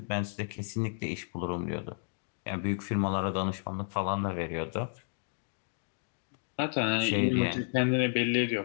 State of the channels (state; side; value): silent; right; digital silence